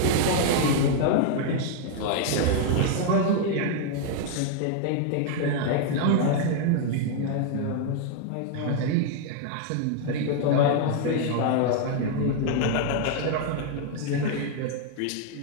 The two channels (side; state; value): both; different; correlation 0.00